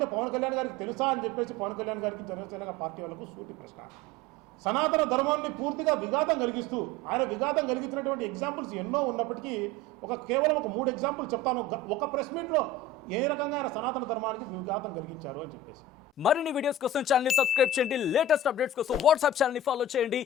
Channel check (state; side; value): normal; both; correlation 0.34